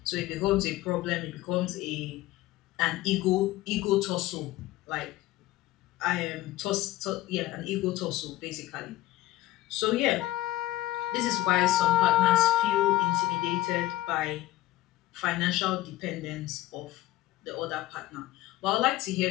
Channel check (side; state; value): right; quieter; 16.5 dB